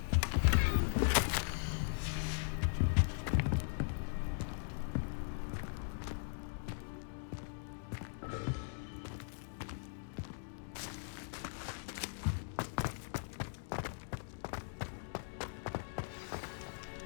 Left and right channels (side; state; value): right; silent; digital silence